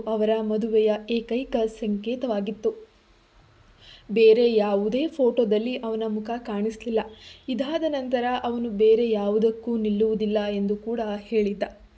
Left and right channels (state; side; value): identical; both; correlation 1.00